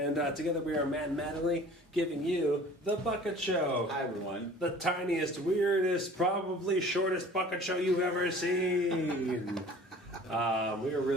together we are Matt and Mattingly giving you The Bucket Show. Hi, everyone. The tiniest, weirdest, probably shortest bucket show you've ever seen. I'm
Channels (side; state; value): both; normal; correlation 0.47